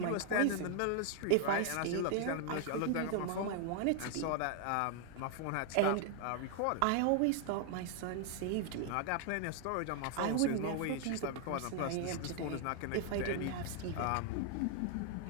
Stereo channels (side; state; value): both; different; correlation 0.00